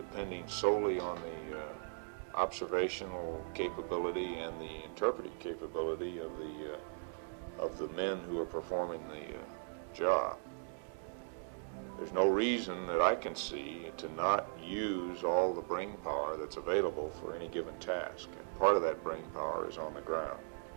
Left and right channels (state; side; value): silent; left; digital silence